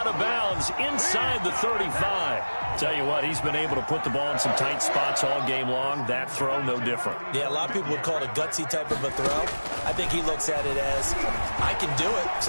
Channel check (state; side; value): inverted; both; correlation -1.00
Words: of bounds inside the 35. Tell you what, he's been able to put the ball in some tight spots all game long. That throw, no different. Yeah, a lot of people would call it a gutsy type of a throw. I think he looks at it as, I can do it,